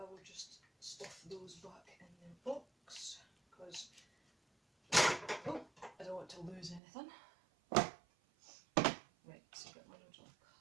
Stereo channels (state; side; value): drops out; left; at 6.8 s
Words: will just stuff those back in their box, because I don't want to lose anything. Right, so get my original